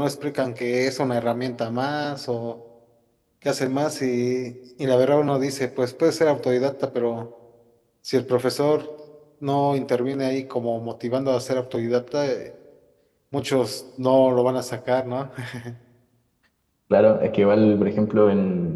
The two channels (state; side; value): identical; both; correlation 1.00